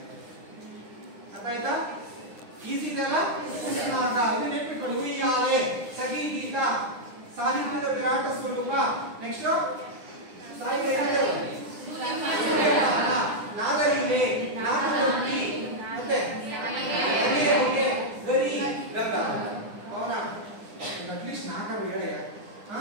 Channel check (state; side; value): late; left; 9.8 ms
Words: ಅರ್ಥ ಆಯ್ತಾ? ಈಸಿ ಇದೆಯಲ್ಲ? ಉಸ್ನಾಗ ಇದು ನೆನ್ಪಿಟ್ಕೊಳ್ಳಿ. ಉಯ್ಯಾಲೆ, ಸಖಿ ಗೀತ, ಸಾಹಿತ್ಯದ ವಿರಾಟ ಸ್ವರೂಪ. ನೆಕ್ಸ್ಟ್ ಸಾಹಿತ್ಯ ನಾಗಲಿಲೆ, ನಾಗಲೋಕಿ, ಮತ್ತೆ ನಗೆಯ ಹೊಗೆ, ಗರಿ, ಗಂಗಾವತರಣ. ಅವನಾ ಅಟ್ಲೀಸ್ಟ್ 4 ಹೇಳಿ.